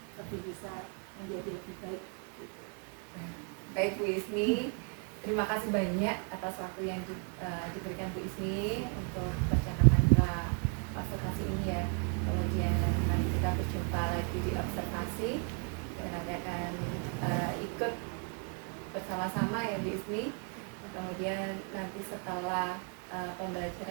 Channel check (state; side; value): quieter; left; 39.9 dB